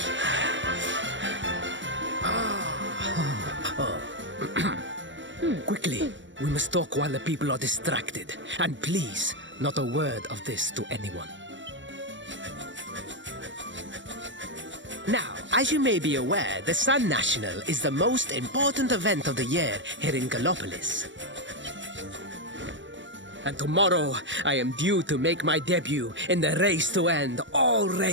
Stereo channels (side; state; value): left; late; 0.54 ms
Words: Quickly, we must talk while the people are distracted. And please, not a word of this to anyone. Now, as you may be aware, the Sun National is the most important event of the year here in Gallopolis. And tomorrow, I am due to make my debut in the race to end all